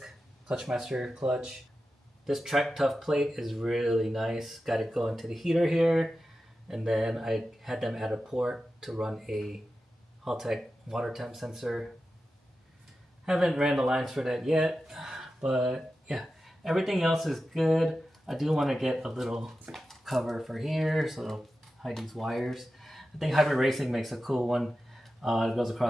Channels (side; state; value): both; normal; correlation 0.92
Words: Clutchmaster clutch. This track tough plate is really nice. Got it going to the heater here. And then I had them add a port to run a Haltech water temp sensor. Haven't ran the lines for that yet, but yeah, everything else is good. I do want to get a little cover for here so it'll hide these wires. I think Hybrid Racing makes a cool one. It goes